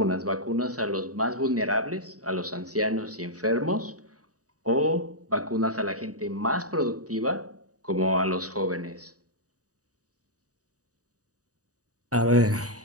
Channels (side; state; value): left; late; 0.66 ms